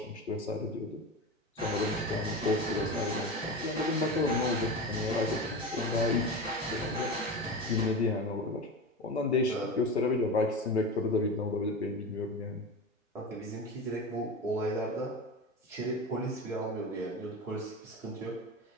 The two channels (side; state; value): both; normal; correlation 0.25